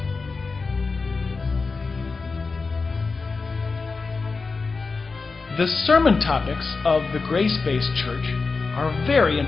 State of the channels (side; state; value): right; quieter; 4.3 dB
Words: The sermon topics of the grace-based church are very